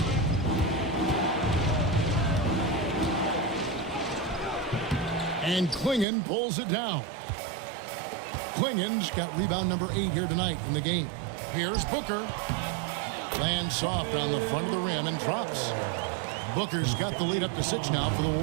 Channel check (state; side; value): drops out; left; at 6.1 s